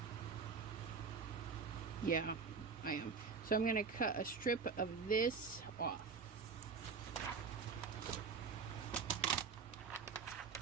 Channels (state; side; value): quieter; left; 5.3 dB